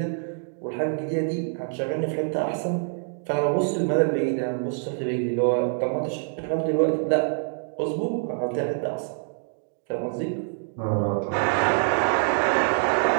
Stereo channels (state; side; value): silent; left; digital silence